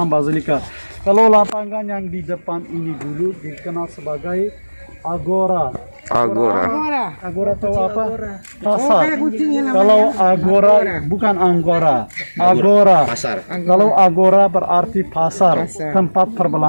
basilika. Kalau lapangan yang di depan ini dulu dikenal sebagai agora. Agora tahu apa? Pasar. Kalau agora bukan anggora. Agora. Pasar. Kalau agora berarti pasar, tempat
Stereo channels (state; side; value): inverted; both; correlation -1.00